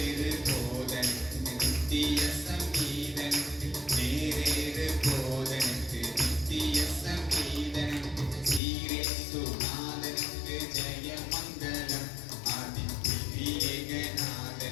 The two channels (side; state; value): right; drops out; at 8.6 s